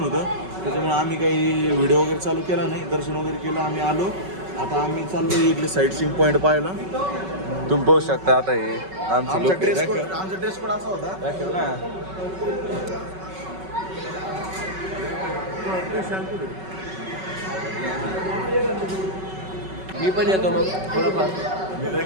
त्याच्यामुळे आम्ही काही व्हिडिओ वगैरे चालू केला नाही. दर्शन वगैरे केलं, आम्ही आलो. आता आम्ही चाललो इथले साईट सीइंग पॉईंट पाहायला. तुम्ही पाहू शकता. आता हे आमचा ड्रेस कोड असा होता. दाखव ना. मी पण येतो मग थोडंफार.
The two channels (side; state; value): left; late; 5.3 ms